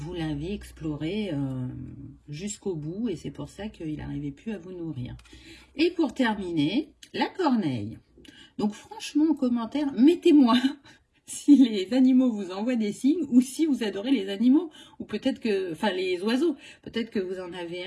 l'avez exploré jusqu'au bout, et c'est pour ça qu'il n'arrivait plus à vous nourrir. Et pour terminer, la corneille. Donc franchement, en commentaire, mettez-moi si les animaux vous envoient des signes ou si vous adorez les animaux, ou peut-être que, enfin les oiseaux, peut-être que vous en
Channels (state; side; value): identical; both; correlation 1.00